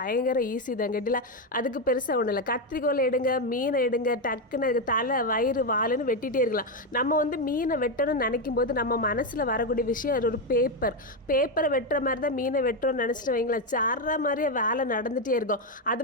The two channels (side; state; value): both; normal; correlation 0.07